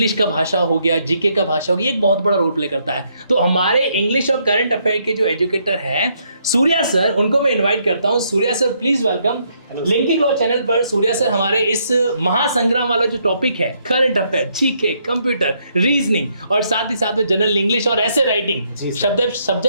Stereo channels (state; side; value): inverted; both; correlation -0.73